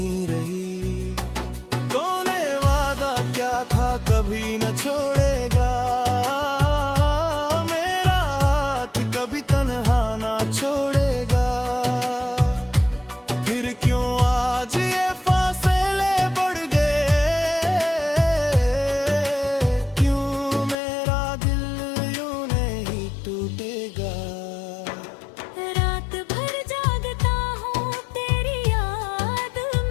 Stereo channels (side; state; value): right; drops out; at 20.8 s